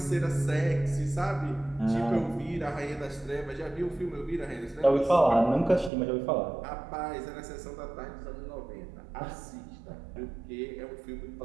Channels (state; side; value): drops out; left; at 5.9 s